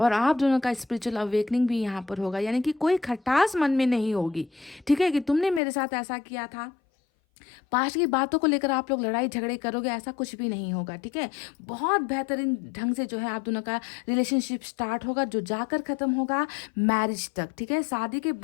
आप दोनों का स्पिरिचुअल अवेकनिंग भी यहाँ पर होगा। यानी कि कोई खटास मन में नहीं होगी, ठीक है, कि तुमने मेरे साथ ऐसा किया था, पास्ट की बातों को लेकर आप लोग लड़ाई झगड़े करोगे, ऐसा कुछ भी नहीं होगा, ठीक है। बहुत बेहतरीन ढंग से जो है आप दोनों का रिलेशनशिप स्टार्ट होगा, जो जाकर ख़त्म होगा मैरिज तक, ठीक है। शादी के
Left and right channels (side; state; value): right; drops out; at 5.6 s